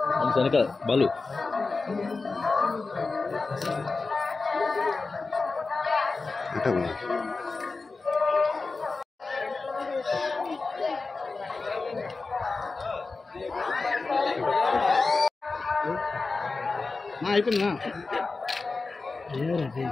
వెనక బాలు అయిపోయిందా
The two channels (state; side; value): quieter; right; 3.9 dB